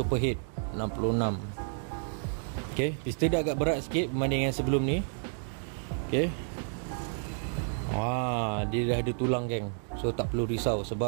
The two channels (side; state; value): left; silent; 57 dB below the other